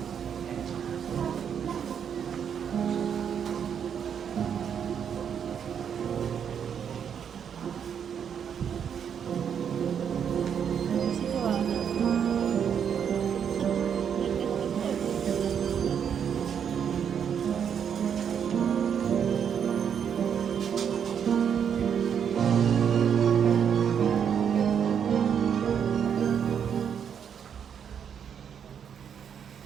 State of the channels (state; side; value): quieter; left; 7.9 dB